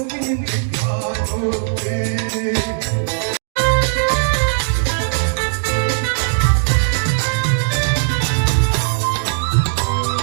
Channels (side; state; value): left; silent; digital silence